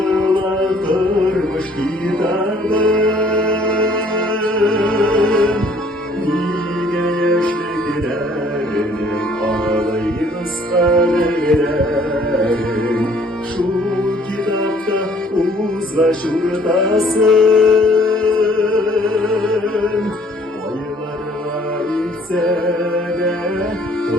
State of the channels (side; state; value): both; normal; correlation 0.59